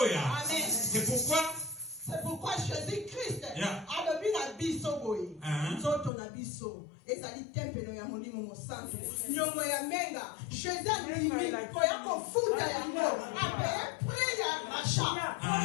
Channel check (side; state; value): right; drops out; at 6.1 s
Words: Amen. C'est pourquoi Jésus-Christ a levé la biso boy. Nzoto na biso. Ezali tempelo ya molimo mosantu. Nyongo ya menga. Jésus a limi ko ya kofuta yango. Ape priya masha.